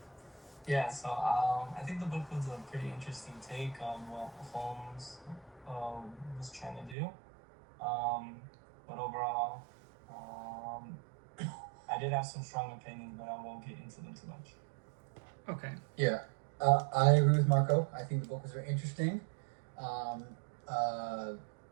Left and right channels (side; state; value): left; drops out; at 7.0 s